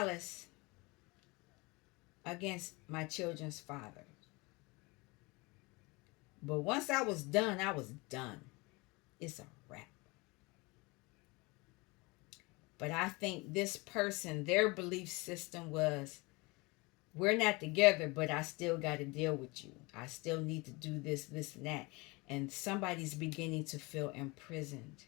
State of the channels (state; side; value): quieter; right; 25.6 dB